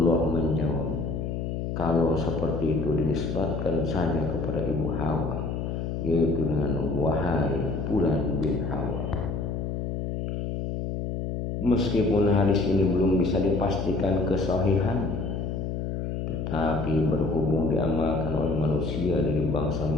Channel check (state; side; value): noise; left; hum, 3 dB below the sound